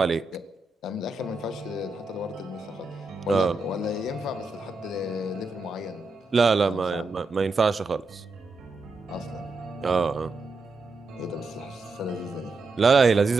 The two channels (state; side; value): quieter; left; 3.4 dB